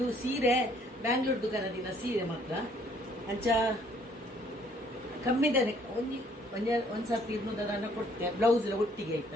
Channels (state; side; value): normal; both; correlation 0.62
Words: ಸೀರೆ ಬ್ಯಾಂಗ್ಳೂರ್ ದುಕಾನದಿನ ಸೀರೆ ಮಾತ್ರ ಅಂಚ ಕಮ್ಮಿದಾನೆ ಒಂದು ಸರ್ತಿ ಇದನ್ನ ಕೊಡ್ತೆ ಬ್ಲೌಸ್ ಒಟ್ಟಿಗೆ ಆಯ್ತು